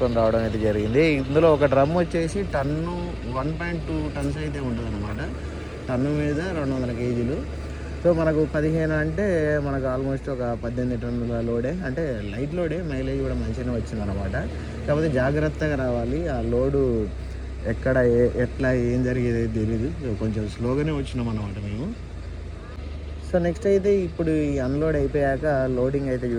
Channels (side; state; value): both; identical; correlation 1.00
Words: రావడం అయితే జరిగింది. ఇందులో ఒక డ్రమ్ వచ్చేసి 1.2 టన్స్ అయితే ఉంటుంది అనమాట. టన్ను మీద 200 కేజీలు. సో మనకు 15 అంటే మనకు ఆల్మోస్ట్ ఒక 18 టన్నుల లోడే, అంటే లైట్ లోడే, మైలేజ్ కూడా మంచిగానే వచ్చిందనమాట. కాకపోతే జాగ్రత్తగా రావాలి, ఆ లోడు ఎక్కడ ఎట్లా ఏం జరిగేది తెలియదు. సో కొంచెం స్లోగానే వచ్చినాం అనమాట మేము. సో నెక్స్ట్ అయితే ఇప్పుడు ఈ అన్లోడ్ అయిపోయాక లోడింగ్ అయితే